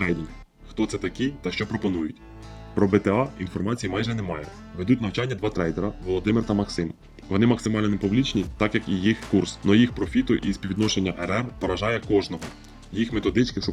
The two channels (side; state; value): both; identical; correlation 1.00